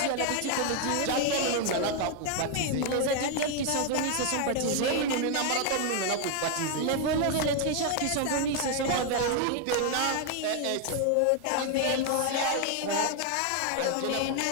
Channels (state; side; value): different; both; correlation 0.01